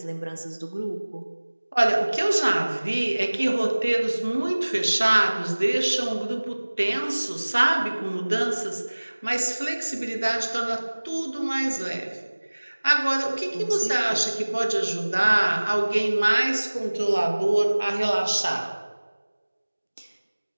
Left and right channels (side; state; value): both; inverted; correlation -1.00